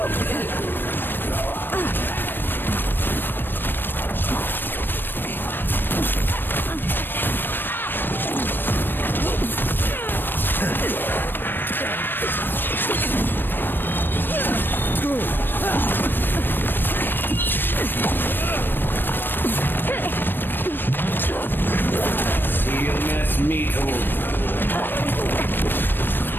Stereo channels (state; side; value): late; right; 0.095 ms